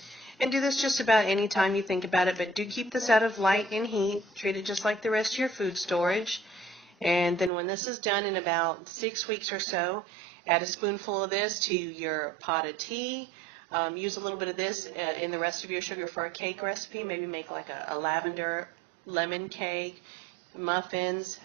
do this just about any time you think about it, but do keep this out of light and heat. Treat it just like the rest of your food storage. And then when this is done in about 6 weeks or so, add a spoonful of this to your pot of tea. Use a little bit of this in the rest of your sugar for a cake recipe. Maybe make like a lavender lemon cake, muffins,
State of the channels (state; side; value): drops out; left; at 7.5 s